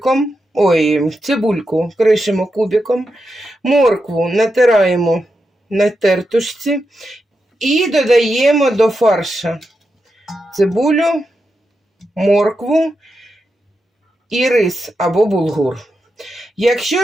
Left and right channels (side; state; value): both; normal; correlation 0.87